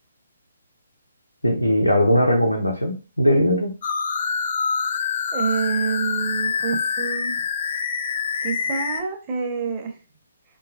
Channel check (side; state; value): both; inverted; correlation -0.76